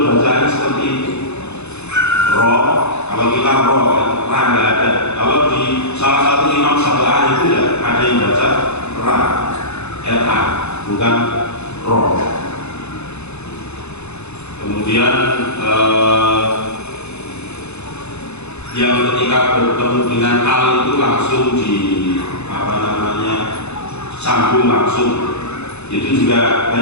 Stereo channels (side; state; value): right; late; 0.81 ms